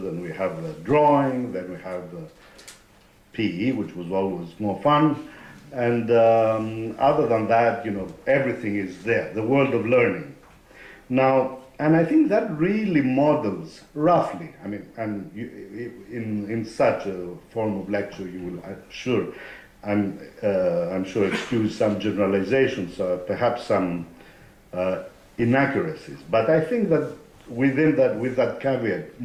we have drawing, then we have PE, which was always more fun. And other than that, everything is there, the world of learning. Now, and I think that really models, roughly, in such a form of lecture, you will, I'm sure, I'm sure excuse some generalizations, perhaps some inaccuracies. But I think that within that, with that caveat,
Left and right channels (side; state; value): both; identical; correlation 1.00